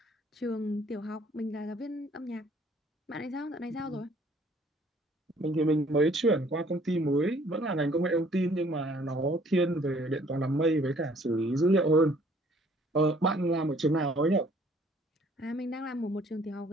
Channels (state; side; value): normal; both; correlation 0.59